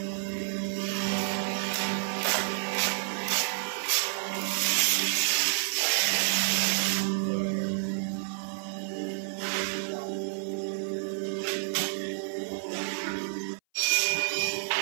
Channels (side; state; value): left; silent; 58 dB below the other